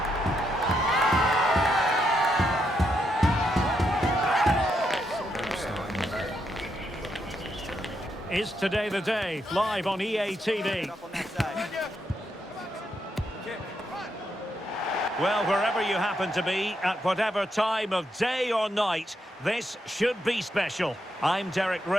Is today the day? Live on EA TV. Well, wherever you happen to be, at whatever time of day or night, this should be special. I'm Derek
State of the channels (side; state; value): both; normal; correlation 0.80